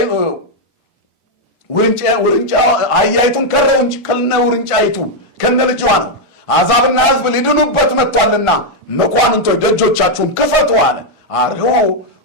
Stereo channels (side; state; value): both; normal; correlation -0.01